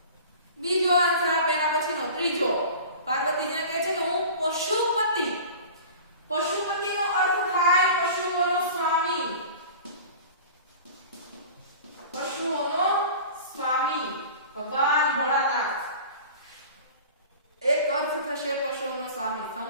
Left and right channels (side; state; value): both; inverted; correlation -0.39